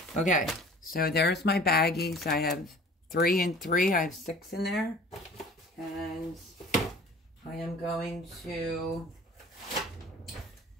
Okay. So there's my baggies. I have 3 and 3. I have 6 in there. And I am going to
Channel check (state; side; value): normal; both; correlation 0.46